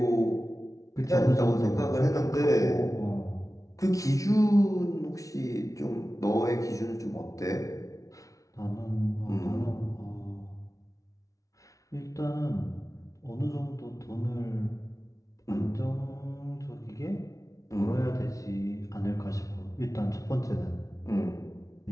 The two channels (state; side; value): late; right; 0.16 ms